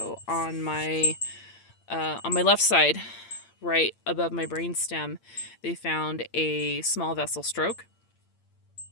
on my left side, right above my brainstem, they found a small vessel stroke.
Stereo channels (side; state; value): right; late; 8.7 ms